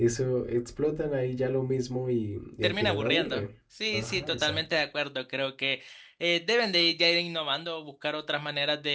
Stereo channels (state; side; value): identical; both; correlation 1.00